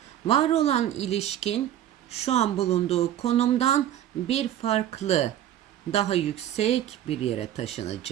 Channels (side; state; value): left; quieter; 11.6 dB